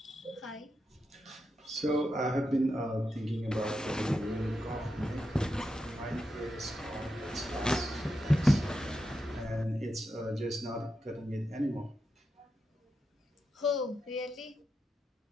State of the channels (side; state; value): both; normal; correlation 0.87